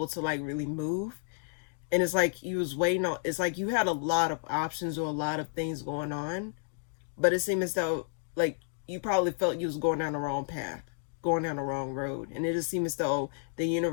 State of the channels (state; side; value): silent; right; digital silence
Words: to like really move. And it's like you was waiting on, it's like you had a lot of options or a lot of things going on. But it seemed as though like you probably felt you was going down the wrong path, going down the wrong road. And it just seemed as though the